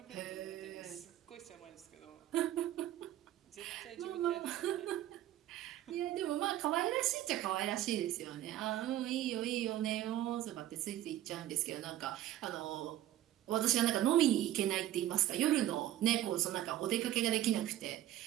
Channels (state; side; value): quieter; left; 13.1 dB